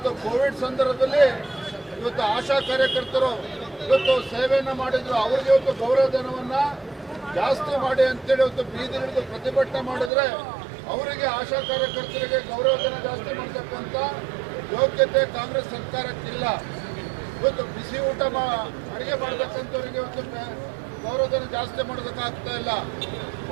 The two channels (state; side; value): drops out; left; at 10.1 s